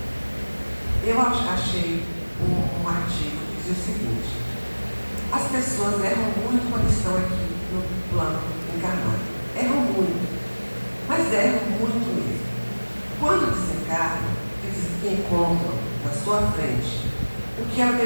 eu achei um artigo que dizia o seguinte: as pessoas erram muito quando estão aqui no plano encarnado. Erram muito, mas erram muito mesmo. Quando desencarnam, eles encontram na sua frente o que ela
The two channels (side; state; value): both; inverted; correlation -1.00